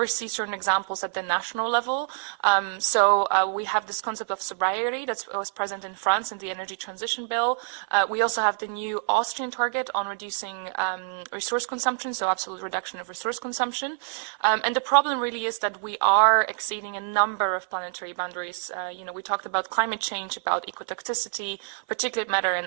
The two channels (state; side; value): silent; left; 59 dB below the other